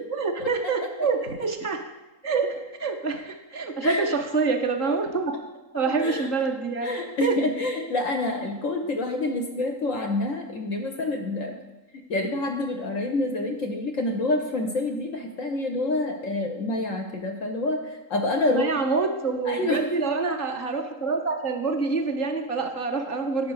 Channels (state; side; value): late; right; 3.8 ms